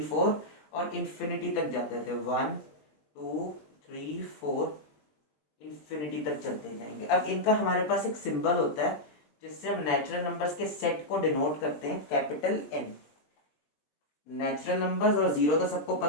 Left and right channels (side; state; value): right; late; 20 ms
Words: 4 और इन्फिनिटी तक जाते थे। 1 2 3 4 इन्फिनिटी तक चलते जाएंगे। अब इनका हमारे पास एक सिंबल होता है जिससे हम नेचुरल नंबर्स के सेट को डिनोट करते हैं, कैपिटल एन। नेचुरल नंबर्स और जीरो तो सबको